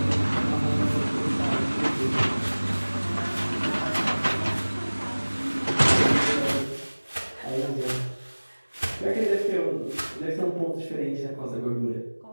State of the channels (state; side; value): inverted; both; correlation -1.00